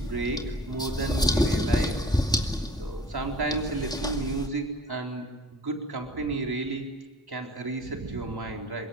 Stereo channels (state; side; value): normal; both; correlation 0.48